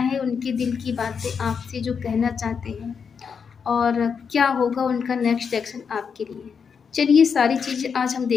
उनके दिल की बातें आपसे जो कहना चाहते हैं, और क्या होगा उनका नेक्स्ट एक्शन आपके लिए। चलिए, सारी चीज़ें आज हम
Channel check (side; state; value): right; quieter; 6.3 dB